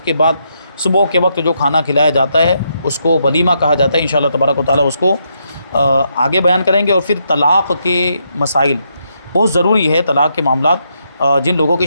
کے بعد صبح کے وقت جو کھانا کھلایا جاتا ہے اس کو ولیمہ کہا جاتا ہے۔ انشاءاللہ تبارک و تعالیٰ اس کو آگے بیان کریں گے۔ اور پھر طلاق کے مسائل بہت ضروری ہے، طلاق کے معاملات جن لوگوں کی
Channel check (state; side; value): inverted; both; correlation -0.79